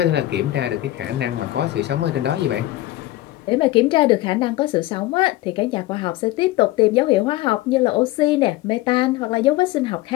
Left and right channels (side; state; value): right; quieter; 16.7 dB